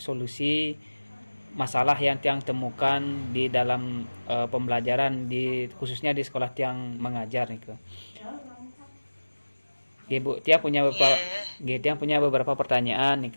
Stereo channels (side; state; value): both; inverted; correlation -1.00